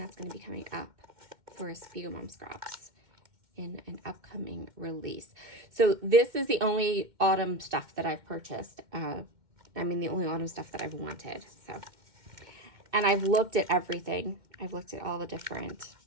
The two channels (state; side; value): late; left; 2.1 ms